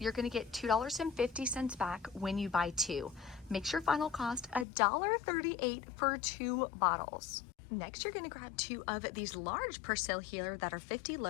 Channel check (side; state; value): right; drops out; at 4.7 s